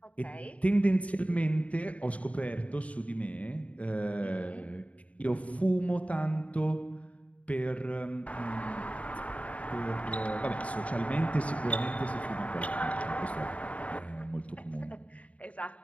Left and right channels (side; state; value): right; late; 0.067 ms